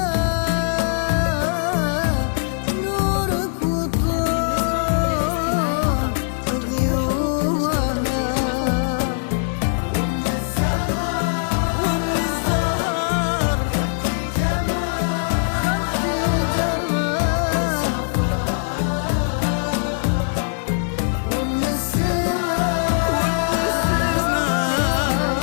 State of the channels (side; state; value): right; silent; digital silence